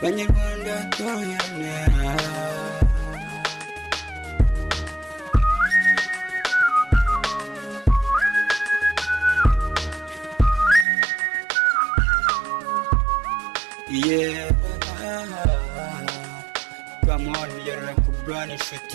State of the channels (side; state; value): left; drops out; at 10.9 s